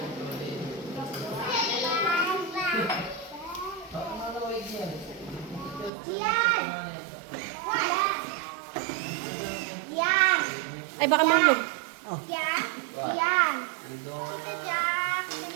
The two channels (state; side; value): drops out; left; at 5.9 s